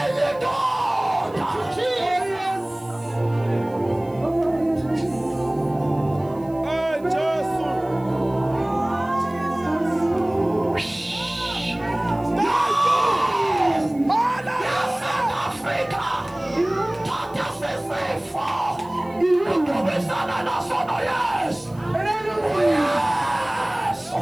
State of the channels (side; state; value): right; noise; hiss, 29 dB below the sound